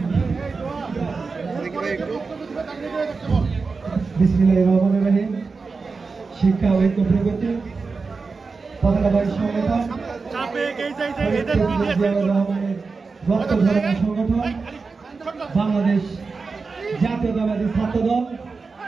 বিসমিল্লাহির রহমানির রহিম। শিক্ষা ঐক্য প্রগতি পতাকাবাহী সংগঠন সংগঠন বাংলাদেশ জাতীয়তাবাদী ছাত্র দল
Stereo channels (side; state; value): left; quieter; 4.4 dB